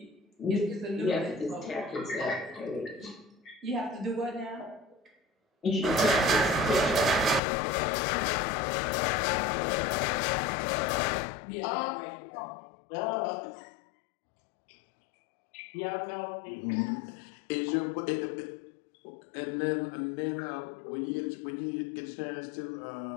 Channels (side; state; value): right; drops out; at 7.4 s